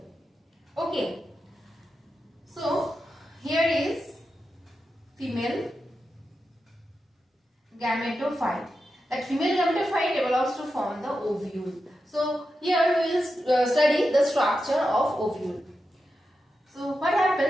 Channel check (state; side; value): normal; both; correlation 0.89